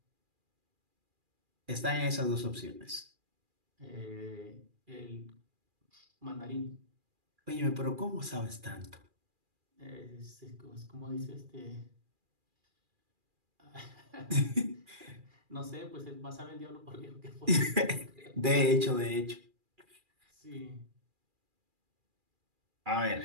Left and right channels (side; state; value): left; late; 2.4 ms